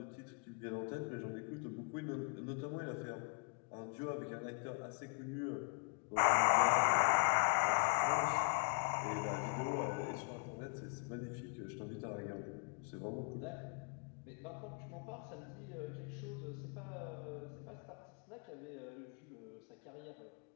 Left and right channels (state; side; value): quieter; right; 39.1 dB